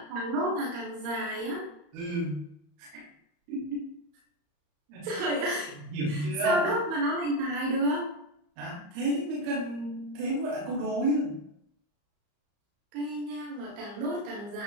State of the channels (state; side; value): late; left; 34 ms